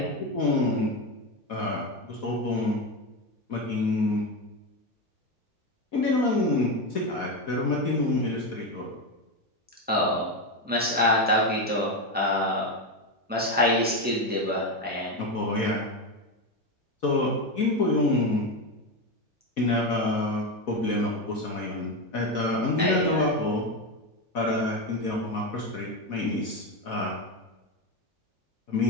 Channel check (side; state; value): both; normal; correlation 0.13